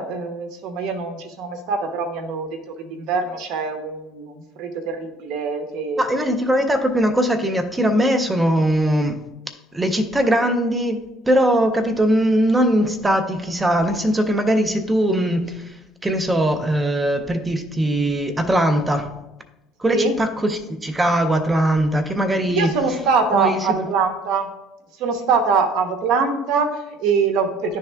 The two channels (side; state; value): both; normal; correlation 0.66